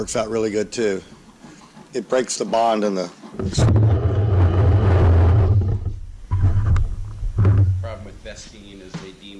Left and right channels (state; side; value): identical; both; correlation 1.00